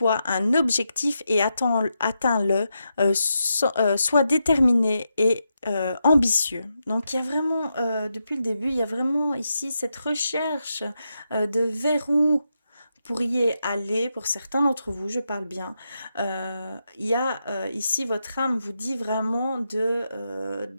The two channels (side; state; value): both; inverted; correlation -0.85